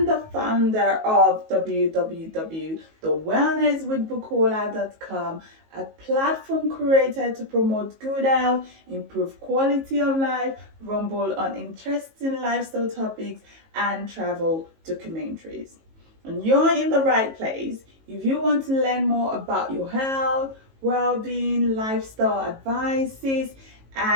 the founder of www.thewellnesswithbukola.com, a platform created to promote good health, improve quality of life, rumble on interesting lifestyle topics, and travel documentaries. And you're in the right place if you want to learn more about your health, well-being, lifestyle advices,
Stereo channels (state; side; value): late; left; 19 ms